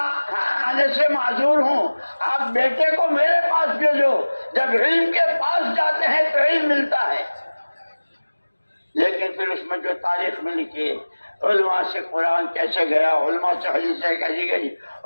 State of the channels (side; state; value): both; inverted; correlation -1.00